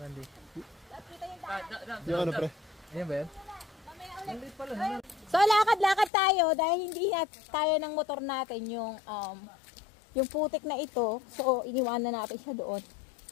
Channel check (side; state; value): right; drops out; at 6.1 s